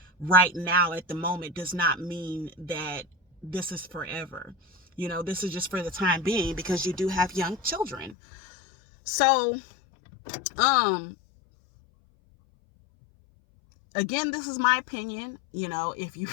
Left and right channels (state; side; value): drops out; right; at 8.2 s